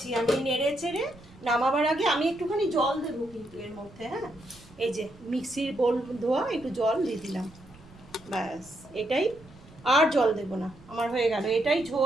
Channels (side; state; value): right; noise; rumble, 23 dB below the sound